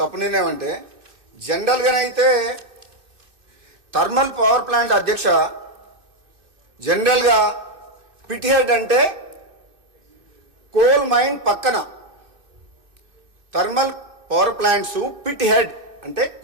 నిర్ణయం అంటే, జనరల్గానైతే థర్మల్ పవర్ ప్లాంట్ అధ్యక్ష, జనరల్గా పిట్ హెడ్ అంటే కోల్ మైన్ పక్కన, thermal power plants pit head అంటే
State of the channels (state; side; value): late; left; 2.6 ms